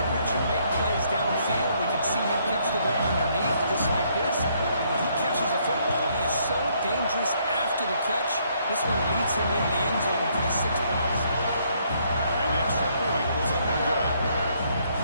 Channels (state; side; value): inverted; both; correlation -0.69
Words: and make plays downfield. We can see him catch the ball underneath, just like this. And when he catches a football, he is so dangerous after the catch. This one leads him into the end zone for the 6 points.